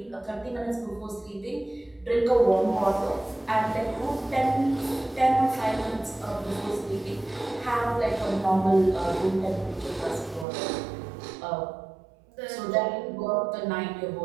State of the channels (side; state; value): left; drops out; at 10.5 s